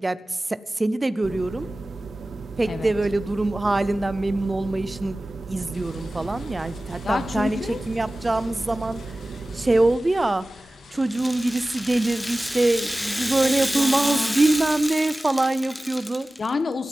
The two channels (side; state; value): both; normal; correlation 0.97